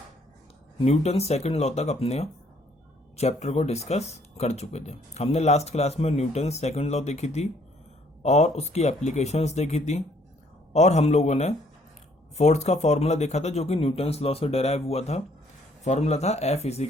न्यूटन सेकंड लॉ तक अपने चैप्टर को डिस्कस कर चुके थे। हमने लास्ट क्लास में न्यूटन सेकंड लॉ देखी थी और उसकी एप्लीकेशंस देखी थी, और हम लोगों ने फोर्स का फॉर्मूला देखा था जो कि न्यूटन्स लॉ से डेराइव हुआ था। फॉर्मूला था F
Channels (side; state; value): both; normal; correlation 0.64